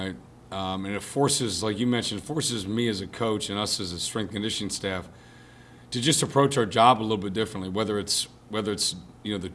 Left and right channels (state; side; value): identical; both; correlation 1.00